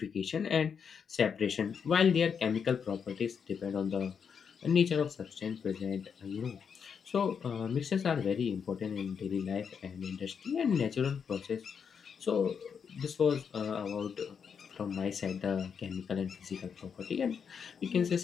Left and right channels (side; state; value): right; quieter; 6.7 dB